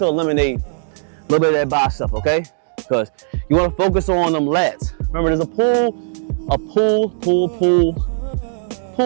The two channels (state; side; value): silent; left; digital silence